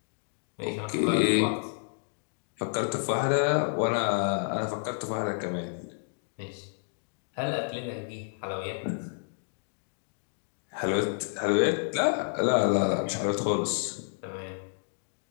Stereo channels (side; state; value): right; silent; digital silence